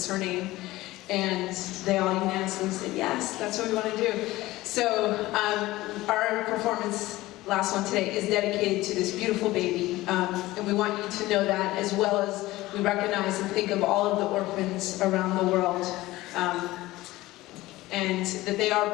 her name. And they all unanimously said, yes, that's what we want to do. So our performance, last one today, is dedicated to this beautiful baby. And we want you to know that, as well as we recognize and think of all of the orphans around the world. And that they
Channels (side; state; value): right; quieter; 18.0 dB